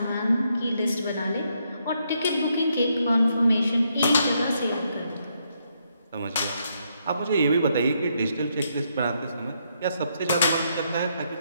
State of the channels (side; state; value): both; inverted; correlation -0.76